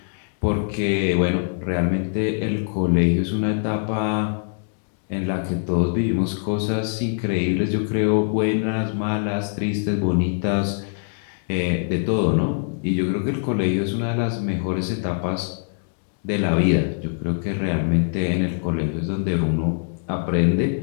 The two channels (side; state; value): right; silent; digital silence